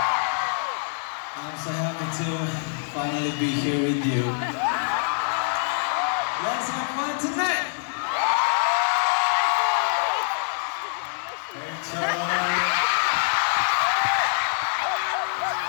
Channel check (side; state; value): right; silent; 62 dB below the other